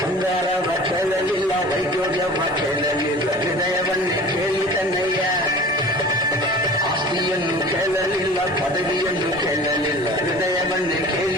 ಬಂಗಾರವ ಕೇಳಲಿಲ್ಲ ವೈದ್ಯೋಗ್ಯವ ಕೇಳಲಿಲ್ಲ ಹೃದಯವನ್ನೇ ಕೇಳಿದನೆಯ ಆಸ್ತಿಯನ್ನು ಕೇಳಲಿಲ್ಲ ಪದವಿಯನ್ನು ಕೇಳಲಿಲ್ಲ ಹೃದಯವನ್ನೇ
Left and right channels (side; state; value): both; normal; correlation 0.41